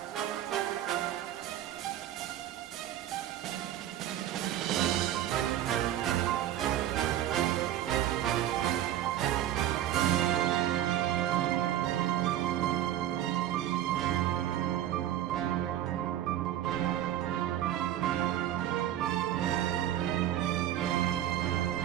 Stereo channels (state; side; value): quieter; left; 12.1 dB